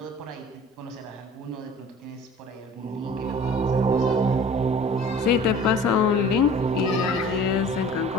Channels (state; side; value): normal; both; correlation 0.45